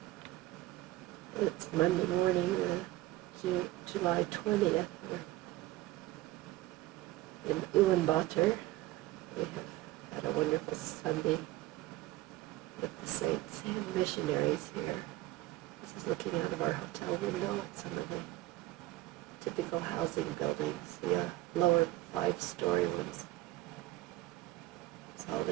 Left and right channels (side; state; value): left; quieter; 17.1 dB